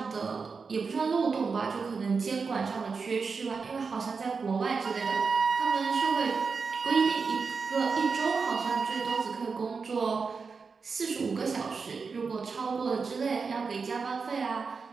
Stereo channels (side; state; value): left; quieter; 5.0 dB